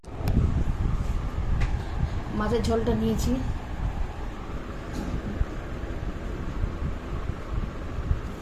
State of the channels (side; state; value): both; identical; correlation 1.00